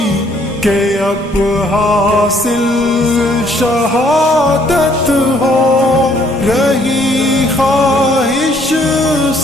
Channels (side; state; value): both; normal; correlation 0.65